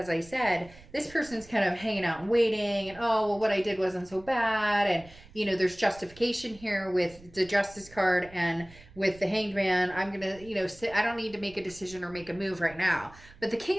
I said, this person's kind of hanging out and waiting, and oh, well, what I did wasn't so bad, and you know, there's justification here with the Justice card and with the Hanged Man. I'm gonna, you know, I don't need to make a decision or make a move right now. But the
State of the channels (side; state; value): right; noise; rumble, 22 dB below the sound